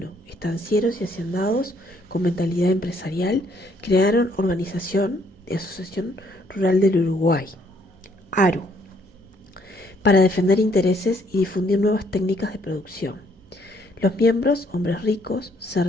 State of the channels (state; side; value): normal; both; correlation 0.67